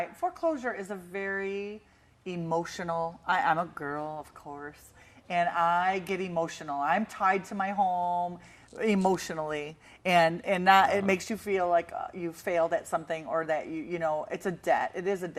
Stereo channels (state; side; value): identical; both; correlation 1.00